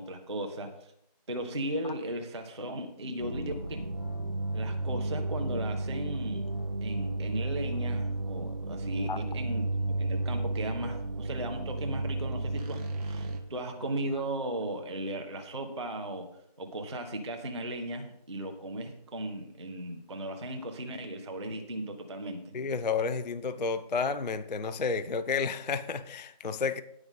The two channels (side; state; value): both; inverted; correlation -0.47